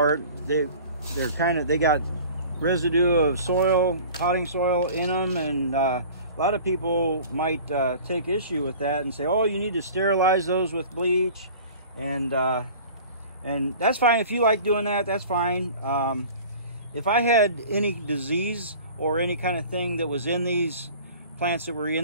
they got residue of soil, potting soil in them, and a lot of people might take issue with that and say, "Oh, you need to sterilize those with bleach," and that's fine. If you like doing that, that's fine. If I had any disease or any kind of thing that was in these plants that were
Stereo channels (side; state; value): both; inverted; correlation -0.43